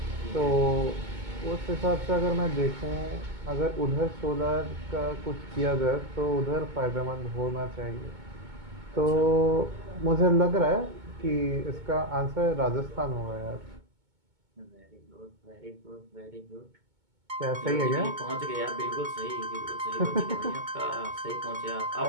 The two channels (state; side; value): late; left; 2.2 ms